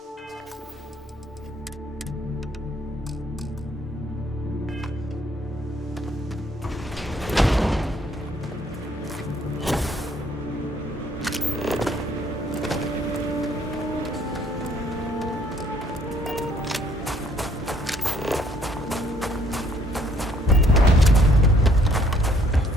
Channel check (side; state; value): both; normal; correlation 0.64